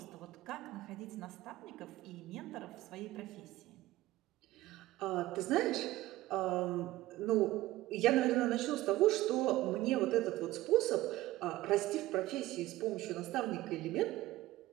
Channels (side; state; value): left; quieter; 16.7 dB